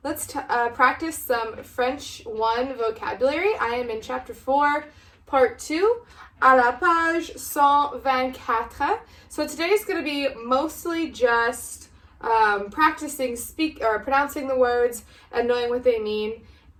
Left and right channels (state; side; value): identical; both; correlation 1.00